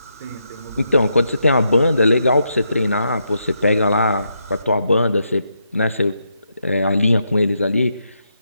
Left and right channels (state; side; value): inverted; both; correlation -0.81